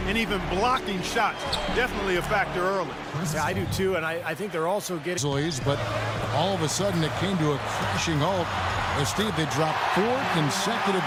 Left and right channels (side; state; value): both; identical; correlation 1.00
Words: and even blocking shots. Definitely a factor early. Yeah, I do, too, and I think they're also getting... But all of a sudden, it came to a crashing halt. As Steve, they dropped 4 consecutive